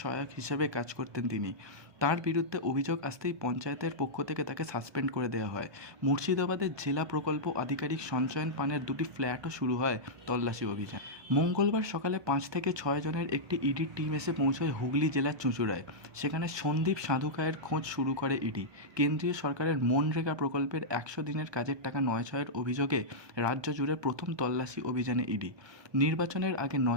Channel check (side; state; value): left; late; 1.2 ms